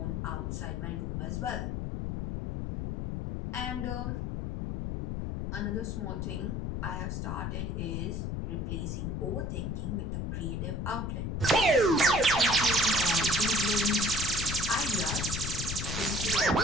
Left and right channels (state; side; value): noise; left; rumble, 3 dB below the sound